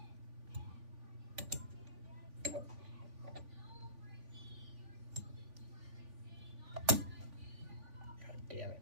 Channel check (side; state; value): left; late; 3.5 ms